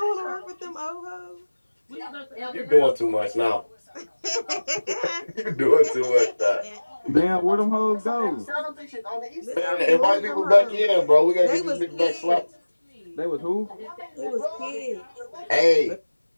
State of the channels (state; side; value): inverted; both; correlation -1.00